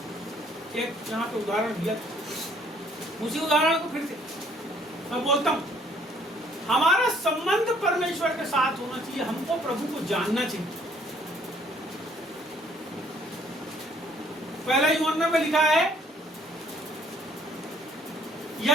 एक यहाँ पे उदाहरण दिया था, उसी उदाहरण को फिर से मैं बोलता हूँ। हमारा संबंध परमेश्वर के साथ होना चाहिए, हमको प्रभु को जानना चाहिए। पहला यूहन्ना में लिखा है,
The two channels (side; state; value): both; normal; correlation 0.62